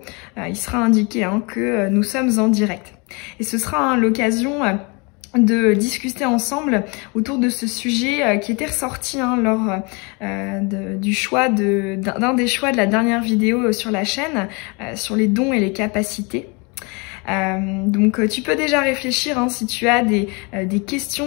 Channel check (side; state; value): right; quieter; 30.5 dB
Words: Il sera indiqué que nous sommes en direct. Et ce sera l'occasion de discuter ensemble autour de ce sujet qui était ressorti lors du choix d'un des choix de la dernière vidéo sur la chaîne, sur les dons et les capacités. Donc tu peux déjà réfléchir si tu as des